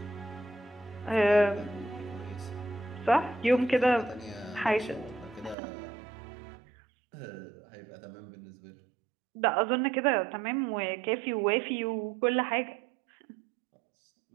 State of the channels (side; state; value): left; drops out; at 5.6 s